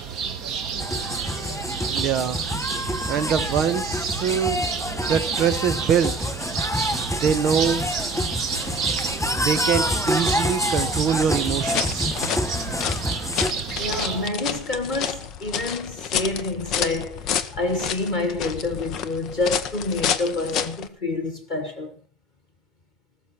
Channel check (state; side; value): normal; both; correlation 0.43